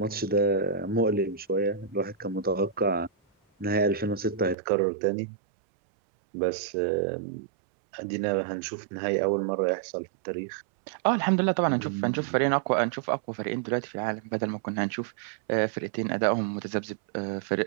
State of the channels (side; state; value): left; drops out; at 4.5 s